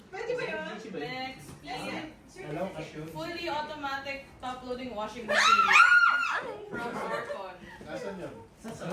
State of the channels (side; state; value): both; identical; correlation 1.00